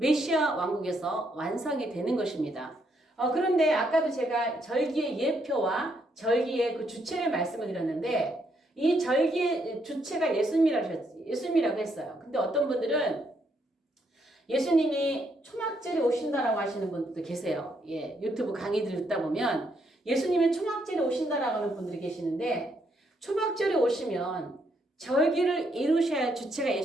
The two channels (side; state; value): both; normal; correlation 0.75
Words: 왕국에서 완성이 되는 것입니다. 그런데 아까도 제가 절기의 예표와 절기의 그 주체를 말씀을 드렸는데 이 절기의 주체가 예수님이라고 했어요. 근데 어떤 분들은 예수님이 초막절에 오신다라고 하시는 분들도 계세요. 예, 유튜브 강의들 듣다 보면 예수님이 초막절에 오신다라고 하는 분들이 계시는데 초막절에 오시면 절기를 이루셔야 할 주체가